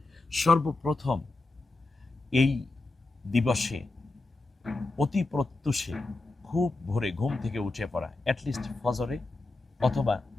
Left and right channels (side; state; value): right; quieter; 3.1 dB